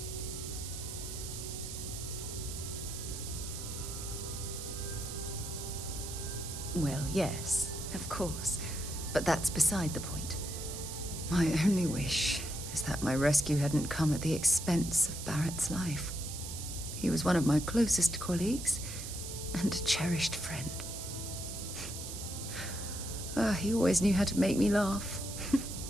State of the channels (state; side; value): noise; right; hiss, 8 dB below the sound